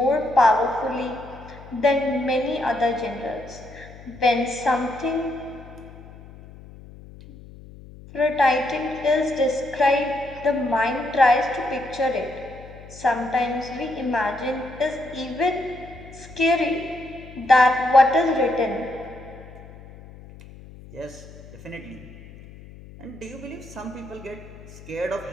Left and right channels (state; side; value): noise; left; hum, 18 dB below the sound